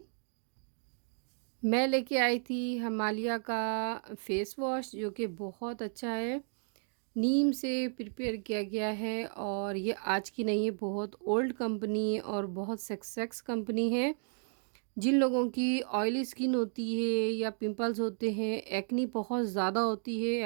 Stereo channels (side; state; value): left; silent; 56 dB below the other